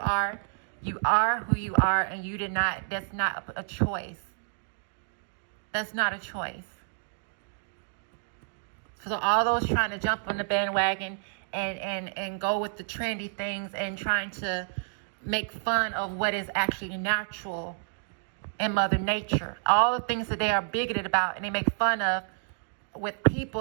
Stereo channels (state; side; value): silent; left; digital silence